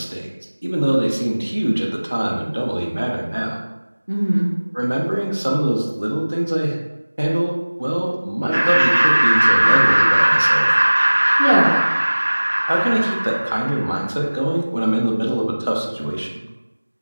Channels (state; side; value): inverted; both; correlation -1.00